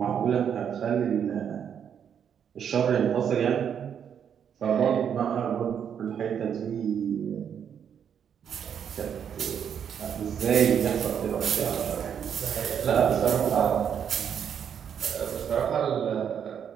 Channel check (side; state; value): left; quieter; 8.2 dB